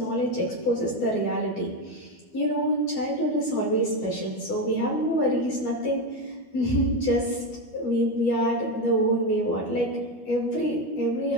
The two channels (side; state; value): right; late; 12 ms